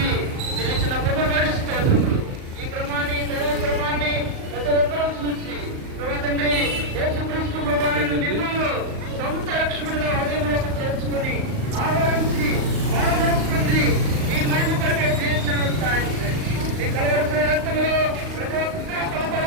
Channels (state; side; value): late; left; 38 ms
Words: మీరు ఇచ్చిన కృపబడి స్తోత్రములు. ఈ క్రమాన్ని దైవ క్రమాన్ని ప్రతి ఒక్కరూ చూసి ప్రభా తండ్రి యేసుక్రీస్తు ప్రభావాన్ని మిమ్మల్ని సొంత రక్షకుడిగా హృదయంలోకి చేర్చుకొని ఆహ్వానించి బాధపరుస్తుంది ఈ మహిమ కొరకే జీవించడం సాధించండి. ఈ కలవరసిన రక్తంలో ప్రతి ఒక్క